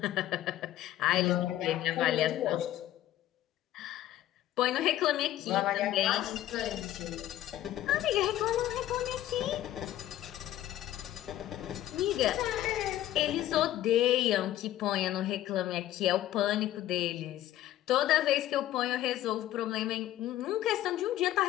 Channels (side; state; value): right; quieter; 13.4 dB